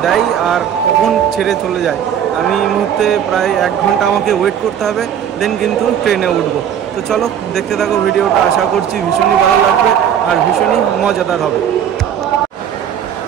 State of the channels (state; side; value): quieter; left; 9.2 dB